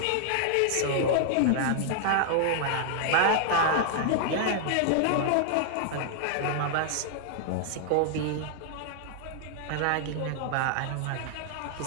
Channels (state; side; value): different; both; correlation -0.01